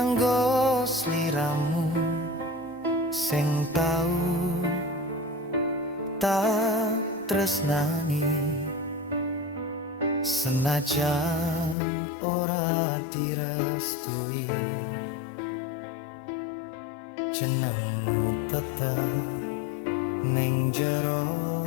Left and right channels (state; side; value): drops out; right; at 11.8 s